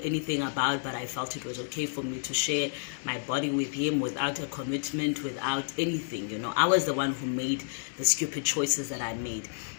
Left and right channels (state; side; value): silent; right; digital silence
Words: anything about, but I felt it was okay for me to share my body with him without a commitment, without anything. I was the one who made the stupid choices that I made,